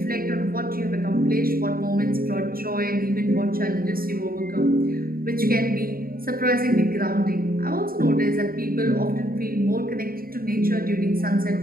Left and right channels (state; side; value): late; left; 0.43 ms